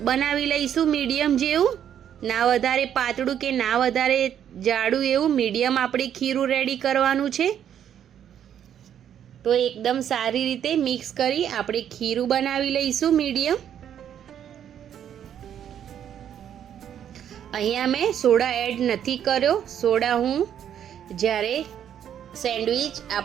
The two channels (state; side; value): quieter; left; 9.6 dB